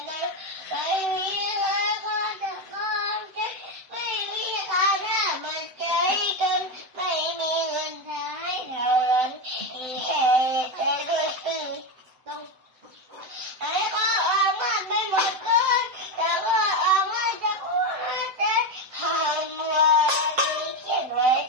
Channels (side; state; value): left; late; 7.8 ms